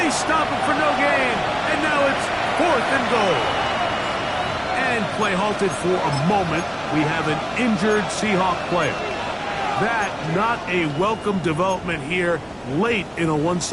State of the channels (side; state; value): both; identical; correlation 1.00